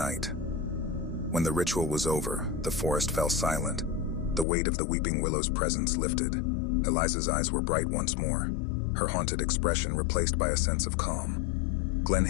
When the ritual was over, the forest fell silent. The weight of the weeping willow's presence lifted. Eliza's eyes were bright once more, her haunted expression replaced by a sense of calm.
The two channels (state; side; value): drops out; right; at 4.5 s